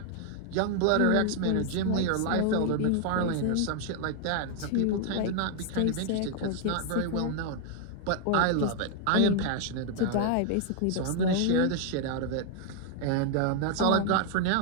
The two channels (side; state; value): both; different; correlation 0.00